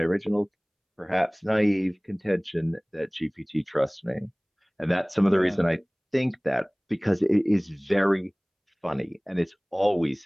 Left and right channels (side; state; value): both; identical; correlation 1.00